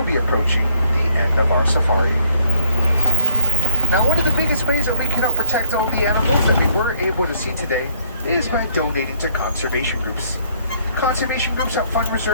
be approaching the end of our safari. Now, one of the biggest ways that we can help protect all the animals that we were able to see today is by donating to conservation groups. Conservation groups help fund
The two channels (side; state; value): both; inverted; correlation -0.65